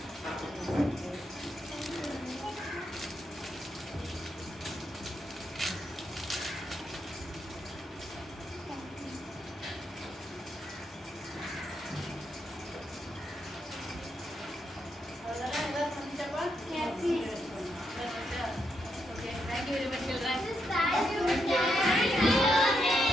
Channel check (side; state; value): both; normal; correlation 0.80